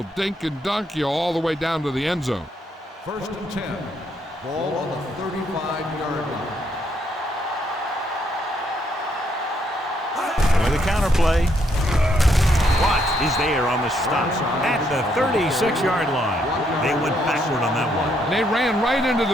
dink and dunk you all the way down to the end zone. 1st and 10. Ball on the 35-yard line. With a counterplay. Watts is there on the stop at the 36-yard line. They went backward on that one. And they ran right into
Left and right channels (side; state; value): both; normal; correlation 0.73